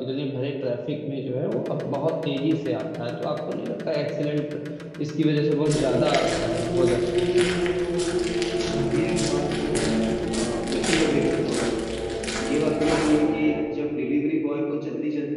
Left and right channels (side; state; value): both; identical; correlation 1.00